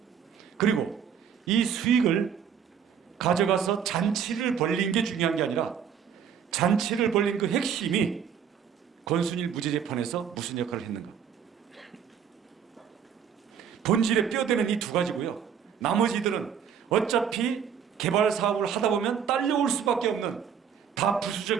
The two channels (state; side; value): quieter; left; 7.8 dB